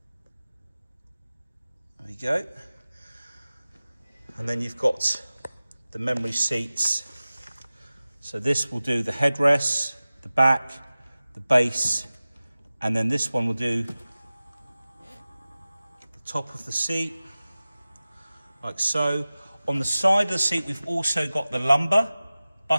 There we go. And then you've got the memory seats. So this will do the headrest, the back, the base, and then this one will do the top of the seat, like so. On the side of the seat, we've also got the lumbar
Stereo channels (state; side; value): inverted; both; correlation -0.97